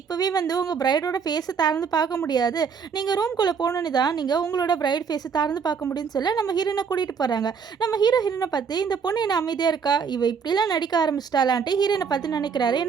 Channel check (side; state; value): left; quieter; 6.2 dB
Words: இப்போவே வந்து உங்கள் பிரைடோட ஃபேஸை திறந்து பார்க்க முடியாது, நீங்கள் ரூம்குள்ளே போகணுன்னு தான் நீங்கள் உங்களோட பிரைட் ஃபேஸை திறந்து பார்க்க முடியும்னு சொல்ல நம்ம ஹீரோனை கூட்டிகிட்டு போகிறாங்க. நம்ம ஹீரோயினை பார்த்து இந்த பொண்ணு என்ன அமைதியாக இருக்கா, இவ இப்படிலாம் நடிக்க ஆரம்பிச்சிட்டாலான்ட்டு ஹீரோனை பார்த்து நினைக்கிறாரு.